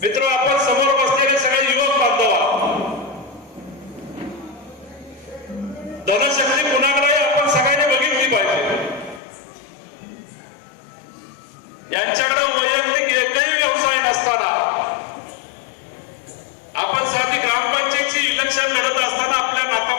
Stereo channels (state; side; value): drops out; right; at 9.2 s